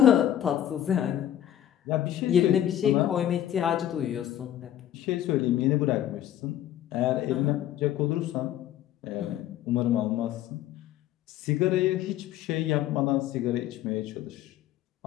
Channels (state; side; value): quieter; right; 11.8 dB